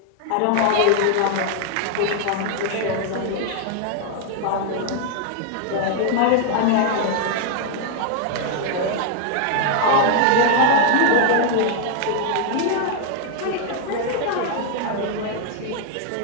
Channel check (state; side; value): different; both; correlation 0.00